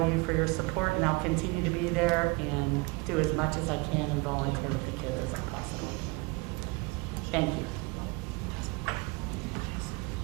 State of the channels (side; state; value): left; quieter; 27.0 dB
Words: you for your support, and I'll continue to be there and do as much as I can and volunteer with the kids as I possibly can. Thank you.